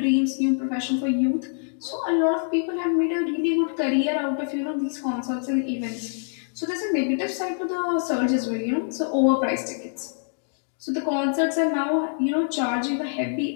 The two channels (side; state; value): right; silent; digital silence